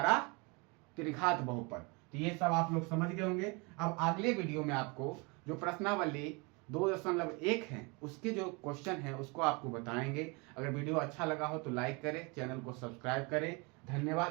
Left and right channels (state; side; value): quieter; left; 29.5 dB